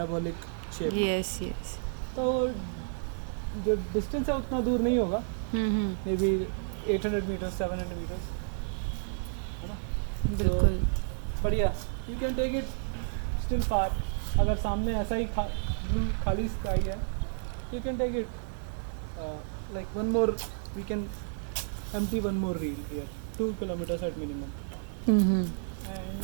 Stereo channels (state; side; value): silent; left; digital silence